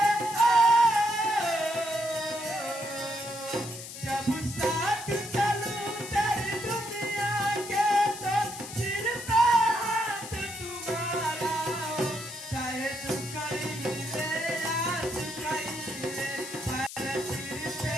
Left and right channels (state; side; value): noise; left; hiss, 11 dB below the sound